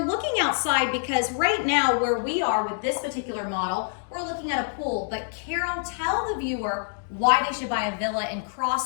looking outside because right now where we are with this particular model, we're looking at a pool. But Carol, tell the viewer why they should buy a villa in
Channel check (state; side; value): silent; right; digital silence